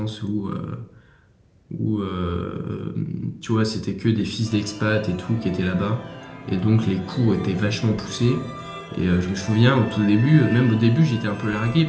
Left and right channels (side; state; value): both; identical; correlation 1.00